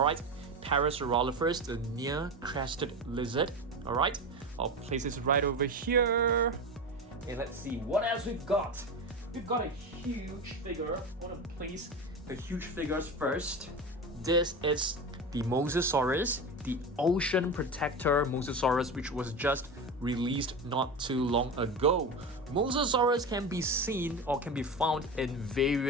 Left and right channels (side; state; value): both; normal; correlation 0.24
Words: Parasaurolophus, the near-crested lizard. Alright, I'll place this right over here. And let's see what else we've got. We've got a huge figure. I want to place the huge figures first. This is the Mosasaurus, the ocean protector Mosasaurus, which was just released not too long ago. Mosasaurus can be seen or can be found in